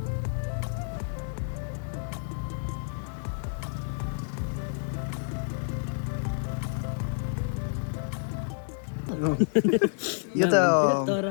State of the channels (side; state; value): right; silent; digital silence